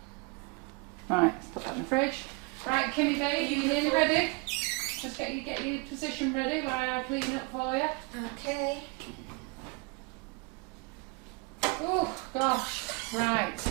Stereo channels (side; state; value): left; quieter; 28.9 dB